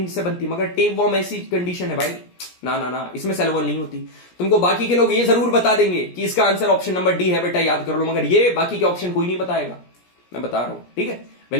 से बनती है, मगर टेप वॉर्म ऐसी कंडीशन है भाई, ना ना ना, इसमें सेल वॉल नहीं होती। तुमको बाकी के लोग ये जरूर बता देंगे कि इसका आंसर ऑप्शन नंबर डी है बेटा, याद कर लो, मगर ये बाकी के ऑप्शन कोई नहीं बताएगा, मैं बता रहा हूं, ठीक है,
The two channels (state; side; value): late; right; 17 ms